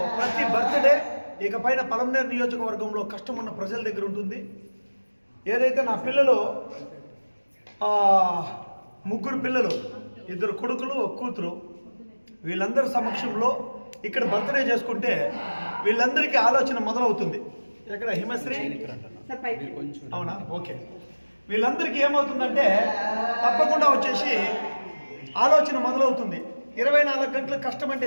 ప్రతి బర్త్డే ఇకపైన పలమనేరు నియోజకవర్గంలో కష్టం ఉన్న ప్రజల దగ్గర ఉంటుంది. ఏదైతే నా పిల్లలు 3 పిల్లలు, 2 కొడుకులు, 1 కూతురు, వీళ్ళందరి సమక్షంలో ఇక్కడ బర్త్డే చేసుకుంటే వీళ్ళందరికీ ఆలోచన మొదలవుతుంది. ఎక్కడ హిమశ్రీ అవునా, ఓకే. వీళ్ళందరికీ ఏమవుతుందంటే తప్పకుండా వచ్చేసి ఆలోచన మొదలవుతుంది. 24 గంటలు కష్టం అంటే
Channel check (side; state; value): both; inverted; correlation -1.00